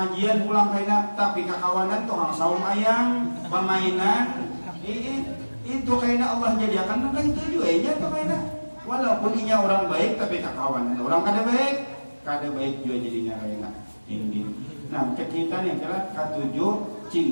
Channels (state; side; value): inverted; both; correlation -1.00